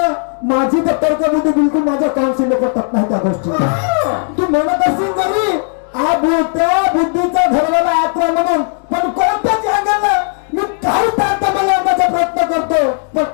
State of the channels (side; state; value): right; silent; 57 dB below the other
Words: माझी तर तर्कबुद्धी बिलकुल माझ्या काउन्सिल पटत नाही त्या गोष्टी तू म्हणत असेल जरी त्या बुद्धीचा घरवाला आत्मा म्हणून पण कोणत्याच अँगलला मी काही तर्क मांडण्याचा प्रयत्न करतो पण